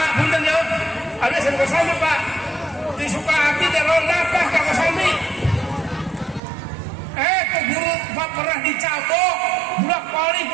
punten ya. Ada SMP Kosambi Pak. Di Sukahati dan Londapah ke Kosambi. Ke guru Pak pernah dicabok, budak pali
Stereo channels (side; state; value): left; drops out; at 6.4 s